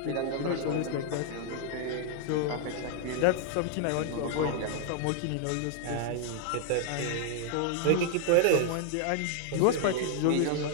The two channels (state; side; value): different; both; correlation -0.01